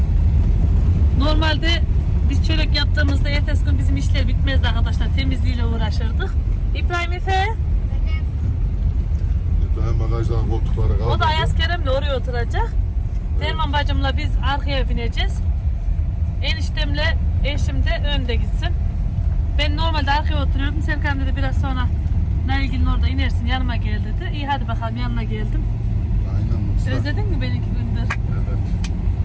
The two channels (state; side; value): identical; both; correlation 1.00